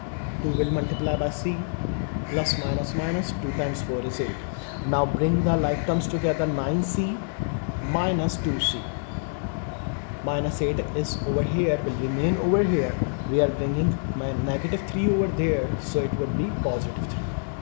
2 will multiply by c, plus minus minus 2 times 4 is 8. Now bring the like terms together, 9c minus 2c. Minus 8 is over here, will remain over here. We are bringing my negative 3 over there, so it would be positive 3.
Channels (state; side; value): silent; right; 61 dB below the other